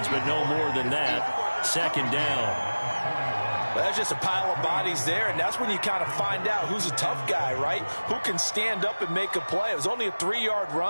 but no more than that. Second down. Well, that's just a pile of bodies there, and that's when you kind of find out who's a tough guy, right? Who can stand up and make a play. It was only a 3-yard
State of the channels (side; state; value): both; inverted; correlation -1.00